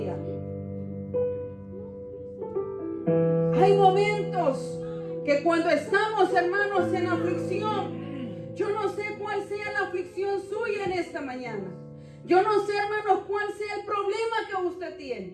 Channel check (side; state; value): both; identical; correlation 1.00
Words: Hay momentos que cuando estamos, hermanos, en aflicción, yo no sé cuál sea la aflicción suya en esta mañana. Yo no sé, hermanos, cuál sea el problema que usted